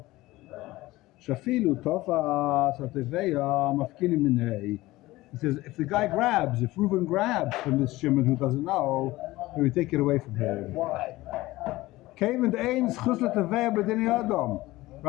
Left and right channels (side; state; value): right; quieter; 18.5 dB